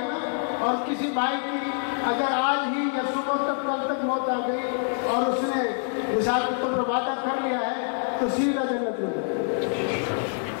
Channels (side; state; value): right; silent; 61 dB below the other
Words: نا، اور کسی بھائی کی اگر آج ہی یا صبح تک کل تک موت آ گئی اور اس نے مثال کے طور پر وعدہ کر لیا ہے تو سیدھا جنت میں جائے۔